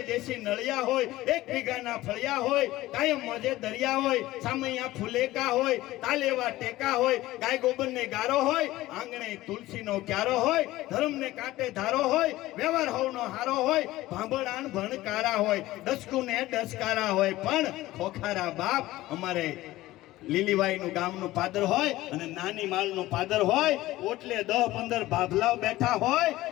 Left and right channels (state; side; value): quieter; right; 16.9 dB